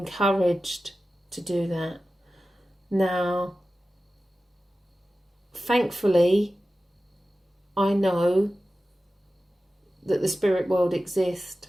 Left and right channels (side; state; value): both; normal; correlation 0.95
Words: to do that. Now, thankfully, I know that the spirit world exists.